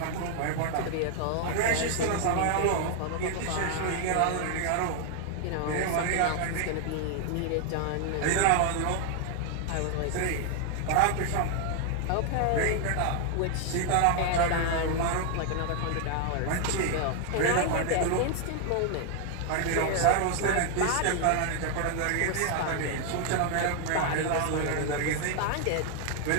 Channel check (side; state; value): both; different; correlation 0.00